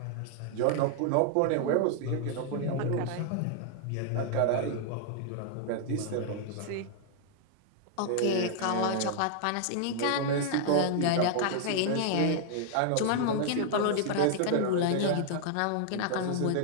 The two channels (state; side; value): different; both; correlation 0.00